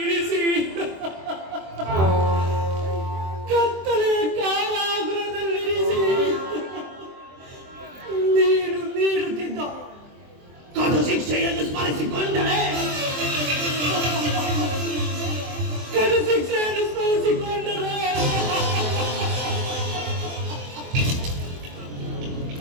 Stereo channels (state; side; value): late; left; 23 ms